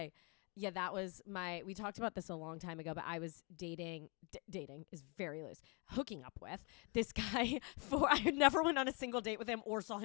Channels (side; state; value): right; quieter; 32.7 dB